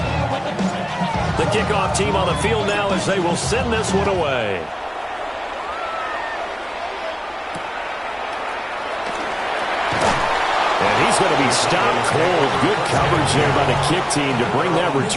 The kickoff team on the field now as they will send this one away. He's going to be stopped cold. Good coverage there by the kick team to bring that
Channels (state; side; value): identical; both; correlation 1.00